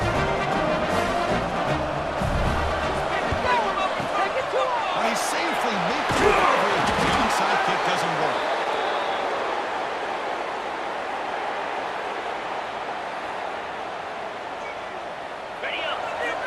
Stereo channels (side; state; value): both; identical; correlation 1.00